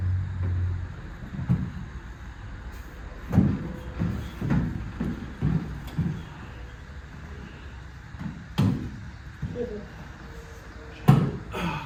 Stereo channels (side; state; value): both; identical; correlation 1.00